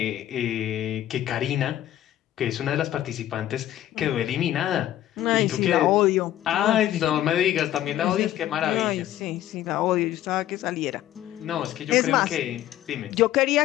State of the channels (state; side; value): quieter; right; 12.9 dB